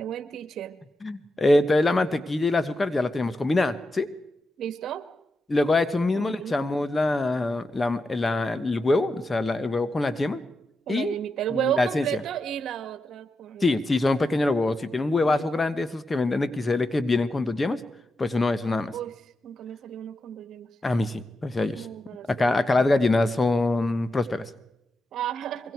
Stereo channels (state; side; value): normal; both; correlation 0.87